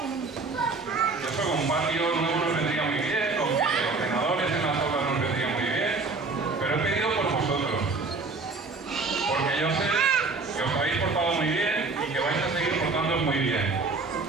eso con un patio nuevo nos vendría muy bien, con ordenadores en las aulas nos vendría muy bien, pero he pedido por vosotros. Porque yo sé que os habéis portado muy bien y que vais a seguir portándoos muy bien.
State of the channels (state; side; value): quieter; left; 3.9 dB